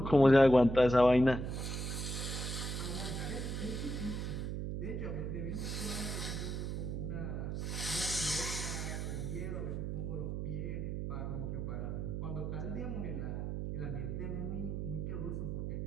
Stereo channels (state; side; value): noise; right; hum, 3 dB below the sound